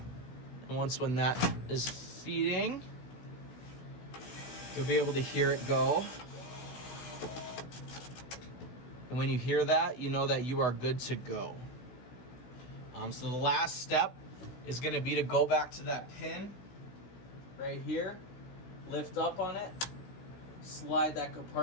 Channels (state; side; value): late; right; 16 ms